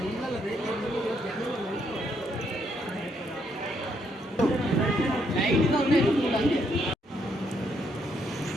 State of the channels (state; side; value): normal; both; correlation 0.74